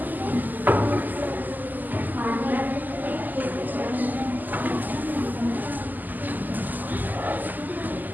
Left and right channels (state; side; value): late; left; 0.085 ms